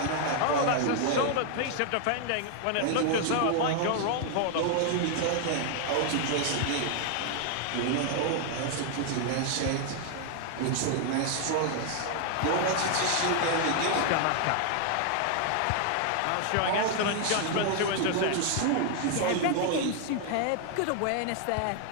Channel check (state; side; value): different; both; correlation 0.00